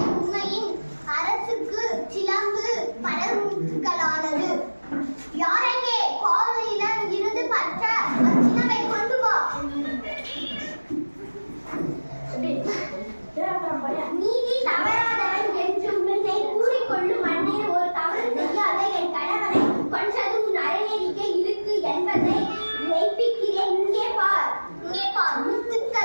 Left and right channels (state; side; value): inverted; both; correlation -1.00